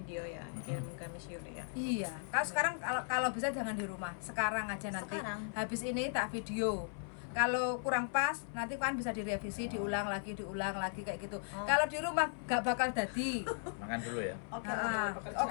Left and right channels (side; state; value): right; silent; 53 dB below the other